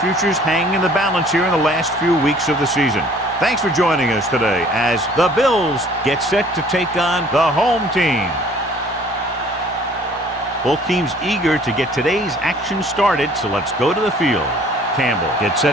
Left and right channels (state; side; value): normal; both; correlation 0.55